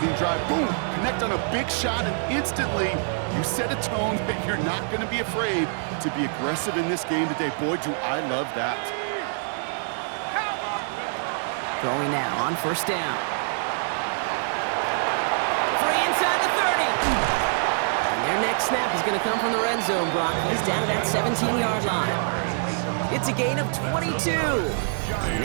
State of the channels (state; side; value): silent; left; 62 dB below the other